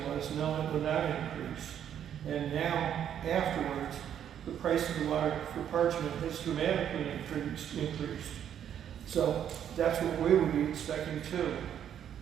was, no, it would not increase. And now, afterwards, the price of the water for Parchment has dramatically increased. So that's what we would be expecting too.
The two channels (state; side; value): quieter; left; 9.5 dB